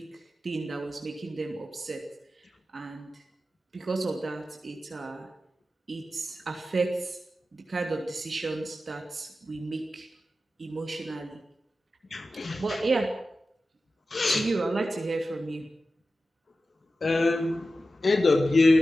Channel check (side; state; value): both; normal; correlation 0.93